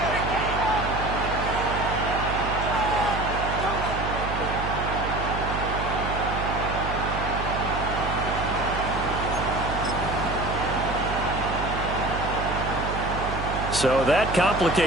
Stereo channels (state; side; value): noise; right; hum, 5 dB below the sound